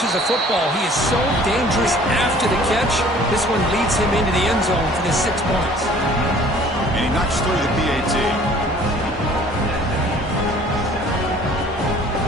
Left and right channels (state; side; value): normal; both; correlation 0.52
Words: a football, he is so dangerous after the catch. This one leads him into the end zone for the 6 points. And he knocks through the PAT.